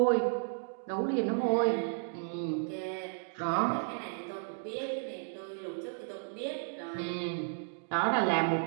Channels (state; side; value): silent; left; digital silence